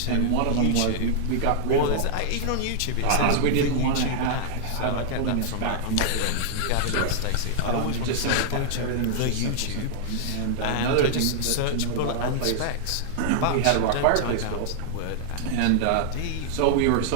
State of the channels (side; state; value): both; different; correlation -0.01